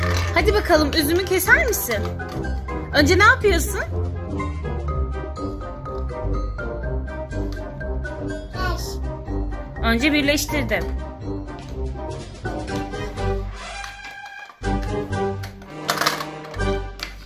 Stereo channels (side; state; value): both; identical; correlation 1.00